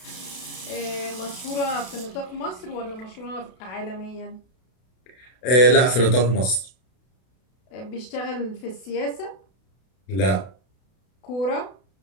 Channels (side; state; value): right; late; 32 ms